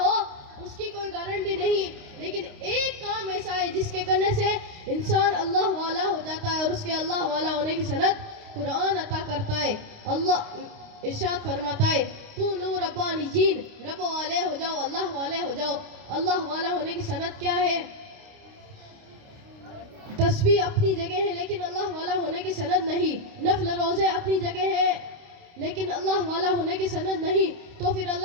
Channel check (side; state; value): left; late; 29 ms